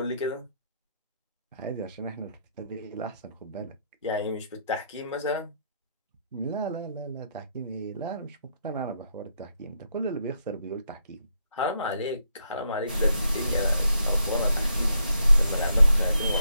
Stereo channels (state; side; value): inverted; both; correlation -0.76